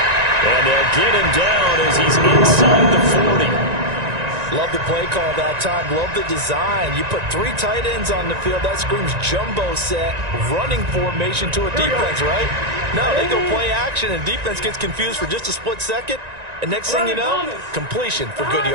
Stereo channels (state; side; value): late; left; 1.9 ms